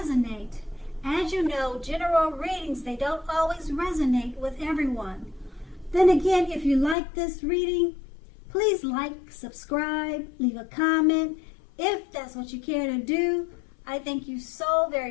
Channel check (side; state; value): right; drops out; at 7.0 s